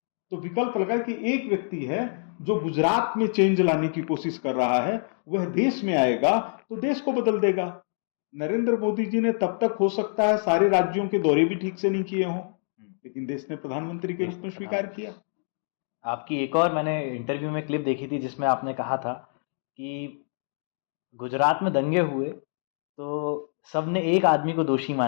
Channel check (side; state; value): right; silent; digital silence